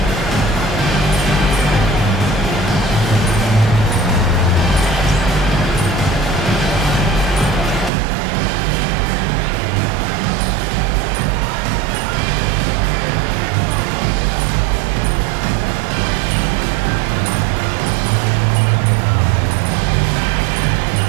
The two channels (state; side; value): drops out; left; at 7.9 s